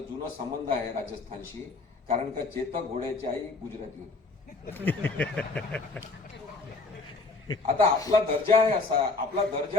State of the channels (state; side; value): quieter; right; 3.8 dB